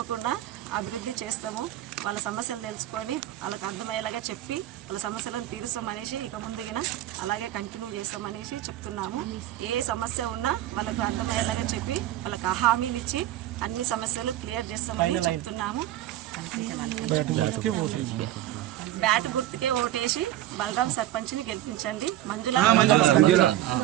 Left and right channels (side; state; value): left; quieter; 13.8 dB